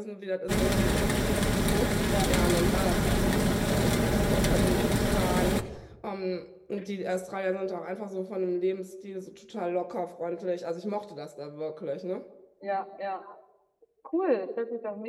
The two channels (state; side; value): identical; both; correlation 1.00